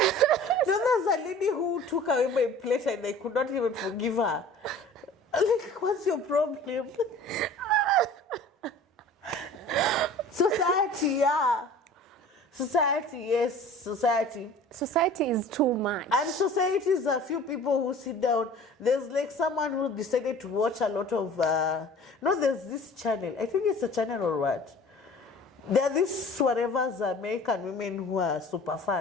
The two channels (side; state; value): both; normal; correlation 0.45